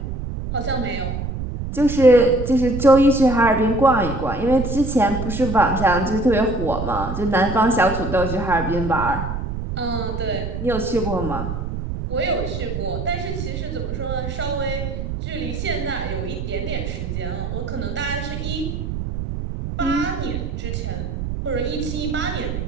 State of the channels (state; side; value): noise; right; rumble, 5 dB below the sound